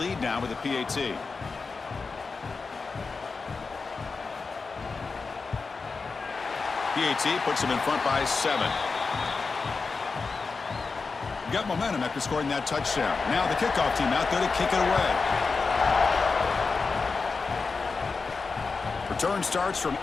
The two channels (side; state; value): right; quieter; 4.5 dB